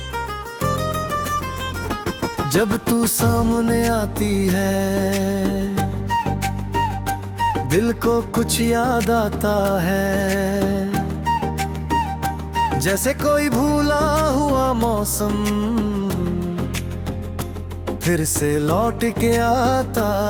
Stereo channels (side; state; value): both; identical; correlation 1.00